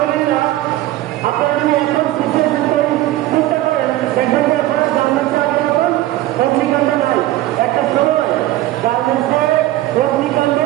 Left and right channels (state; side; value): quieter; left; 15.7 dB